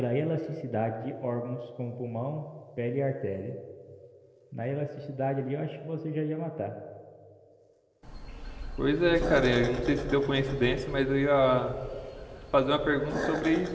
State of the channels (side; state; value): both; identical; correlation 1.00